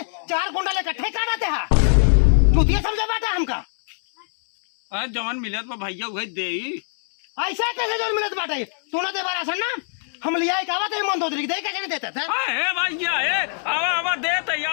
4 कुंटल इकट्ठे काटते हैं चूतिया समझे बाटे हमका। अरे जवन मिलत बा भैया वही दे। ऐसा कैसे जो मिलत बाटे? तू ना दे राशन ना हम लिया कावा तो मन दे कैसे नहीं देता था? हे भैया हे आवा आवा दे तो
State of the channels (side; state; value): right; silent; 64 dB below the other